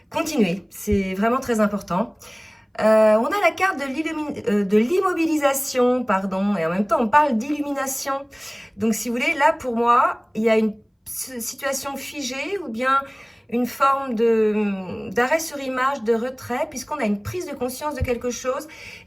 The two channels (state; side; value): identical; both; correlation 1.00